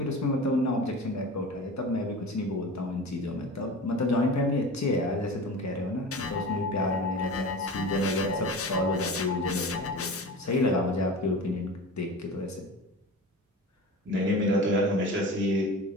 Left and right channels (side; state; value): both; normal; correlation 0.33